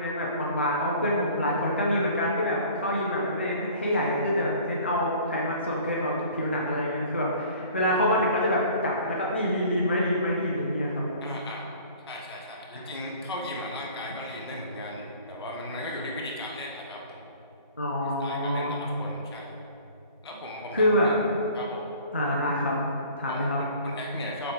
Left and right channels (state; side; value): inverted; both; correlation -0.48